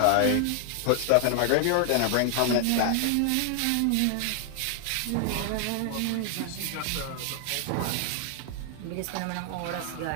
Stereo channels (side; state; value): both; different; correlation 0.00